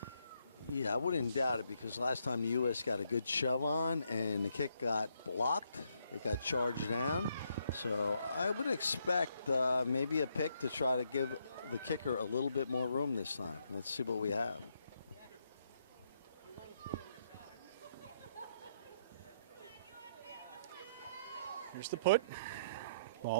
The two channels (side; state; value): both; inverted; correlation -0.74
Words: Yeah, I wouldn't doubt it, because last time the U.S. got a good shove on and the kick got blocked. It got charged down. So I would expect maybe a pick to try to give the kicker a little bit more room this time. Let's see what we have. Here's the put.